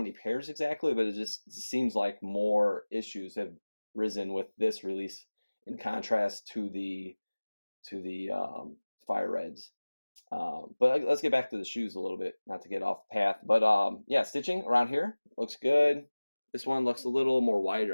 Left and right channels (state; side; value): inverted; both; correlation -1.00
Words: pairs exactly, but it just seems like more issues have risen with this release in contrast to the fire reds. But let's get back to the shoes a little bit, not to get off path. But yeah, stitching around here looks good. This one looks a little more